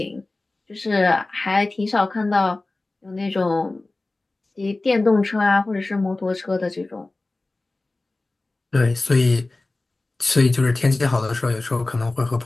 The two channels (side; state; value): right; quieter; 3.1 dB